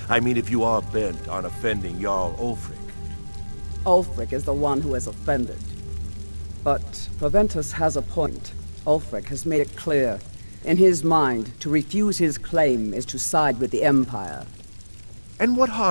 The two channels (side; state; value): both; inverted; correlation -1.00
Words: I mean, if you are bent on offending Jarl Ulfric. Ulfric is the one who has offended. But Proventus has a point. Ulfric has made it clear In his mind, to refuse his claim is to side with the Empire. And what